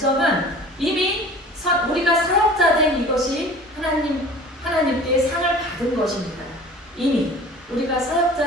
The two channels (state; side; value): normal; both; correlation 0.43